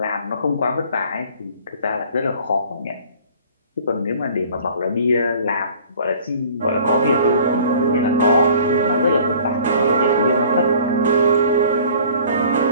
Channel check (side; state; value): both; inverted; correlation -0.50